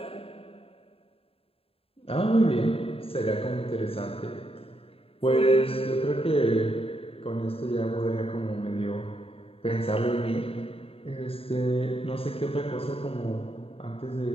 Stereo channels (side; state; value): right; late; 0.27 ms